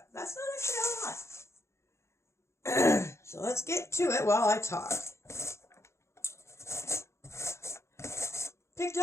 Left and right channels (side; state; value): right; late; 0.13 ms